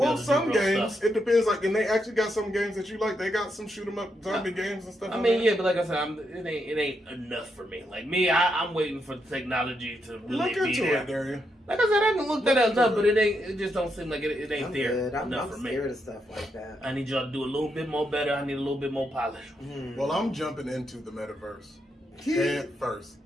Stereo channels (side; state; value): both; normal; correlation 0.81